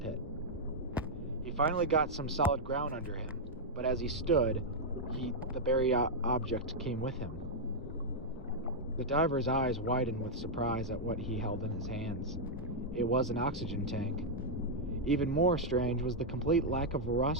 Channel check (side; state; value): both; normal; correlation -0.04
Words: He finally got some solid ground under him, but as he stood, the buried object came with him. The diver's eyes widened with surprise at what he held in his hands. It was an oxygen tank. Even more strange was the complete lack of